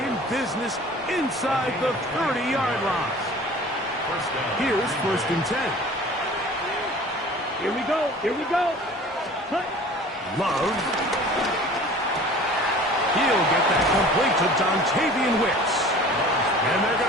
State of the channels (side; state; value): both; normal; correlation 0.45